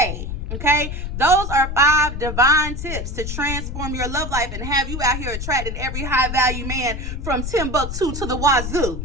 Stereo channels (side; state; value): left; noise; rumble, 5 dB below the sound